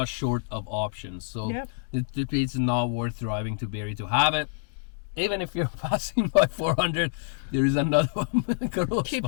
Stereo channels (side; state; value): right; silent; digital silence